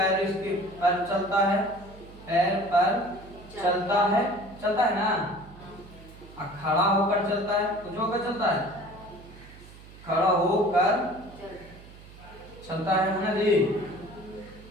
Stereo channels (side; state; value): right; noise; hum, 19 dB below the sound